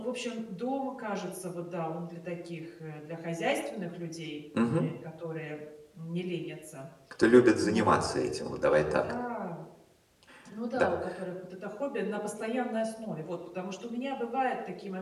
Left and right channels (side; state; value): both; identical; correlation 1.00